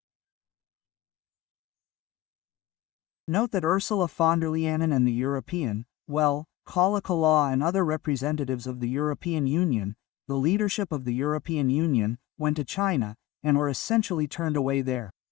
Note that Ursula von der Leyen and the European, Kala Kala and other representatives of the European Union, the leadership of the European Union, went to China, and were essentially turned away there.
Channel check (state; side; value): quieter; right; 16.0 dB